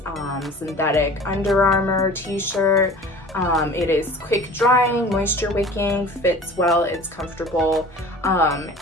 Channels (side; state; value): both; normal; correlation 0.42